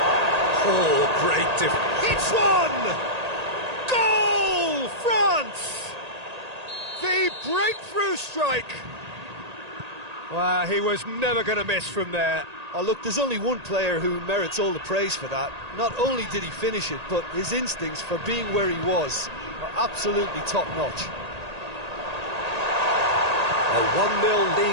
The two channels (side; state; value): left; late; 1.8 ms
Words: Oh, great defense. It's one! Goal, France! The breakthrough strike. Wow, he was never going to miss from there. Oh, look, there's only one player who merits all the praise for that. Not only did he finish it, but his instincts for being where he was are absolutely top-notch. A 1-0